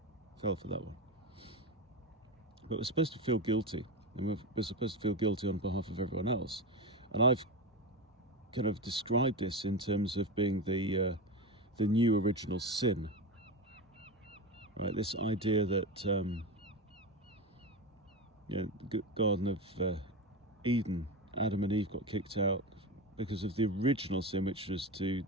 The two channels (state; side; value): normal; both; correlation 0.20